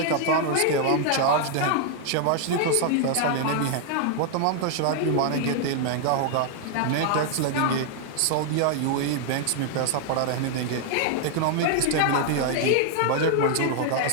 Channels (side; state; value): both; different; correlation 0.00